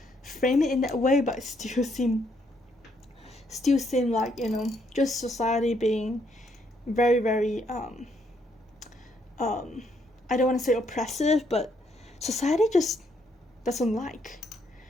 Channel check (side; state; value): both; normal; correlation 0.72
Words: frame it in that way, but it still seem like, just society being very, very I don't want to say oppressive, but society just doesn't like